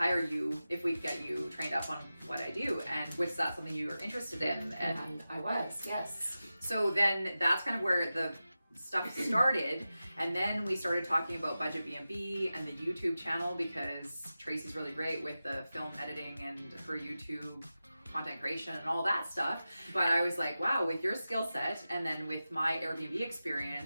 you if we get you trained up on what I do. And was that something you were interested in? And I was, yes. So then that's kind of where the stuff started. And then we started talking about Budget BnB and the YouTube channel because Tracy's really great with the film editing and her YouTube content creation and all that stuff. But I was like, wow, with your skill set and then with my Airbnb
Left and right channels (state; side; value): inverted; both; correlation -0.94